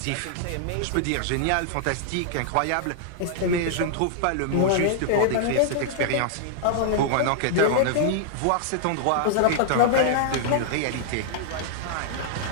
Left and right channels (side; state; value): both; different; correlation -0.01